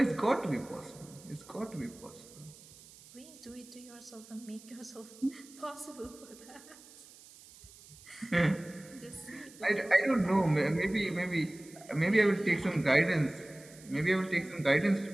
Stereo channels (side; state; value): right; noise; hiss, 21 dB below the sound